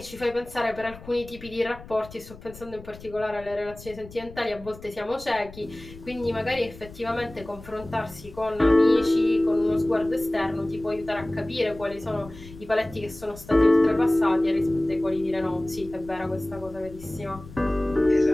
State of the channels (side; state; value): left; noise; rumble, 17 dB below the sound